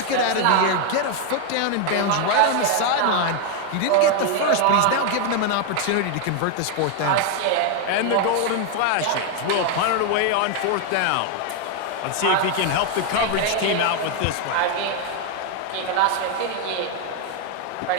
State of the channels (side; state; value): both; different; correlation 0.01